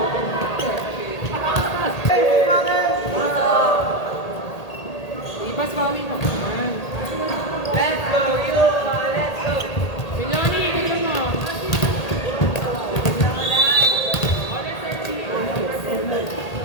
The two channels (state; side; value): late; right; 1.8 ms